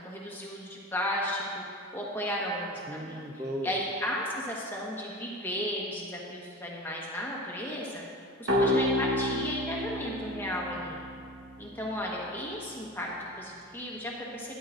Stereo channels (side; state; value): both; normal; correlation 0.32